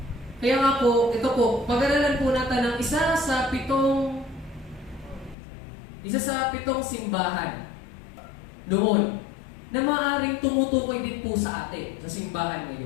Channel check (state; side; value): drops out; right; at 5.4 s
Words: Kaya nga po, ito po, pag-aralan po natin ng isa sa pitong simbahan noon na maaaring tumutukoy din po sa atin, sa simbahan